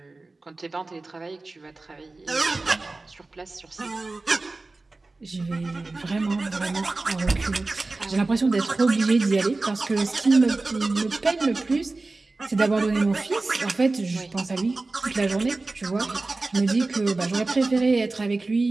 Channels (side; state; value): left; quieter; 3.3 dB